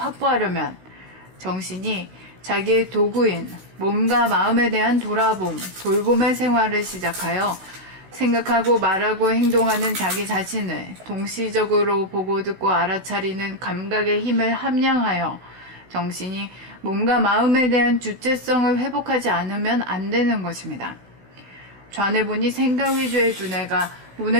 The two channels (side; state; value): left; late; 16 ms